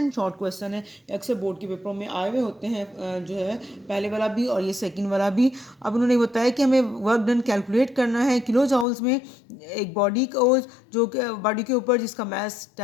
शॉर्ट क्वेश्चन है, अक्सर बोर्ड के पेपरों में आए हुए होते हैं, जो है पहले वाला भी और ये सेकंड वाला भी। अब उन्होंने बताया कि हमें वर्क डन कैलकुलेट करना है किलो जाउल्स में। एक बॉडी को, जो बॉडी के ऊपर जिसका मास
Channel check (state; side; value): drops out; right; at 8.8 s